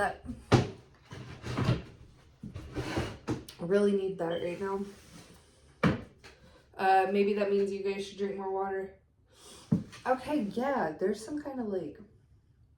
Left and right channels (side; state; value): both; identical; correlation 1.00